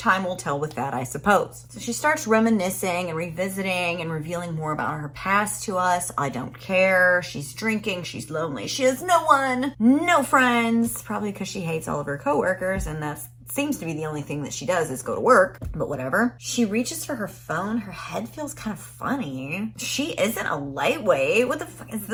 will tell with that, I suppose. So she starts reminiscing and revisiting and revealing more about her past to us. I don't care. She's drinking. She's lonely. She has no one, no friends, probably because she hates all of her coworkers, and that's seems to be the only thing that she does is go to work, but whatever. She reaches for her phone. Her head feels kind of funny. She isn't a lightweight. What the fuck is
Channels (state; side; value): identical; both; correlation 1.00